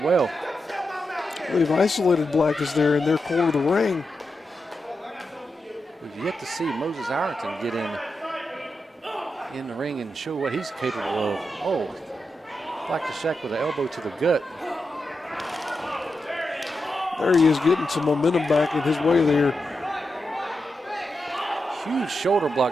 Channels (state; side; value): normal; both; correlation 0.88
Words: well. They've isolated Blackness there in their corner of the ring. We've yet to see Moses Ireton get in the ring and show what he's capable of. Oh, Blackness Jack with an elbow to the gut. There he is, getting some momentum back in his way there. Huge shoulder